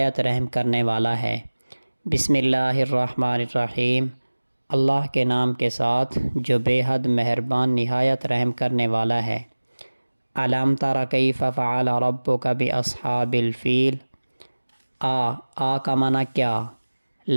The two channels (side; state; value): both; inverted; correlation -1.00